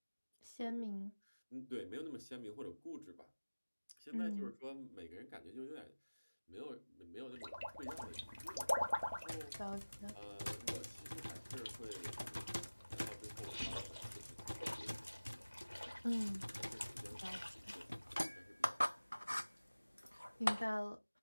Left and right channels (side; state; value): both; inverted; correlation -1.00